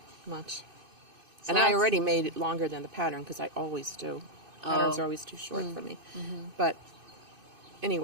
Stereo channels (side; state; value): left; late; 2.6 ms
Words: Much. So And I that's- already made it longer than the pattern because I always do. Patterns are always too short for me. But